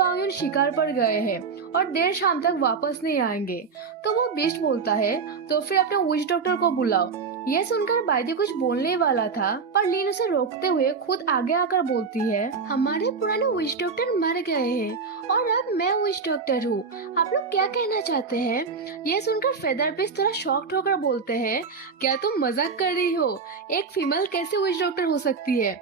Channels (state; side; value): quieter; left; 5.2 dB